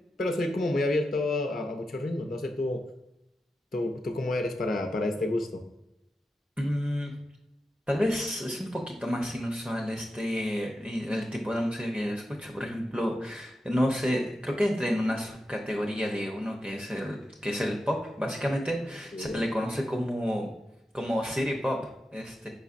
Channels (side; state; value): both; normal; correlation 0.89